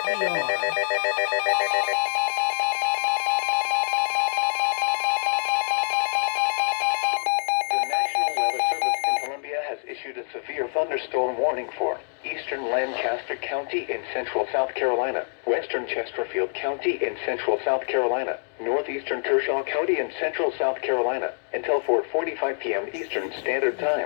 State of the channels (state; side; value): silent; right; digital silence